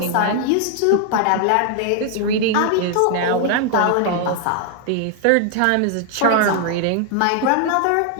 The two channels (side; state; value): both; different; correlation 0.00